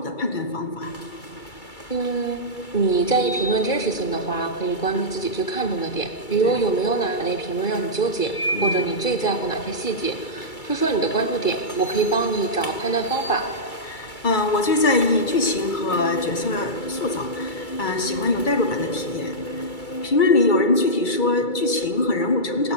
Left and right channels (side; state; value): right; late; 2.3 ms